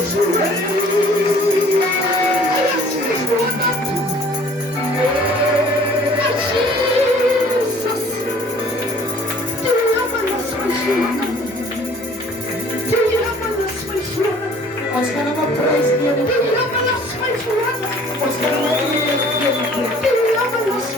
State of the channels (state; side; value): normal; both; correlation 0.52